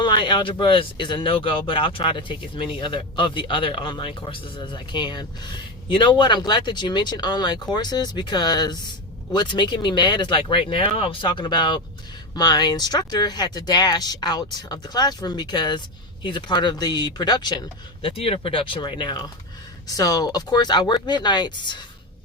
algebra is a no-go, but I'll try to take as many of the other online courses as I can. You know what? I'm glad that you mentioned online courses, because what's making me mad is like right now I was talking about my instructor had to dash out of the classroom because he's a part of the production, the theater production right now. So of course I work midnights.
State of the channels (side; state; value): both; normal; correlation 0.16